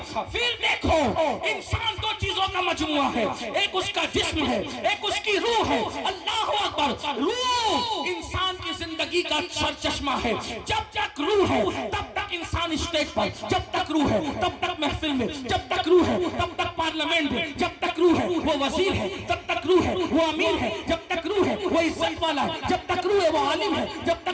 پھر دیکھو انسان دو چیزوں کا مجموعہ ہے, ایک اس کا جسم ہے, ایک اس کی روح ہے. اللہ اکبر. روح انسان کی زندگی کا سر چشمہ ہے. جب تک روح ہے تب تک انسان اسٹیج پر, جب تک روح ہے تب تک محفل میں, جب تک روح ہے تب تک پارلیمنٹ میں, جب تک روح ہے وہ وزیر ہے, جب تک روح ہے وہ امیر ہے, جب تک روح ہے وہ عزت والا ہے, جب تک روح ہے وہ عالم ہے, جب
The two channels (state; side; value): identical; both; correlation 1.00